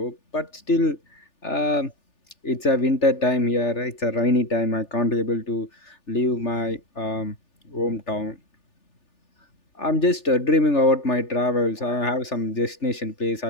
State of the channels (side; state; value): right; late; 3.4 ms